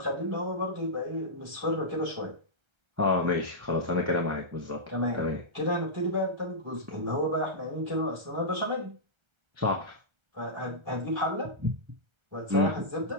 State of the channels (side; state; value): left; late; 1.3 ms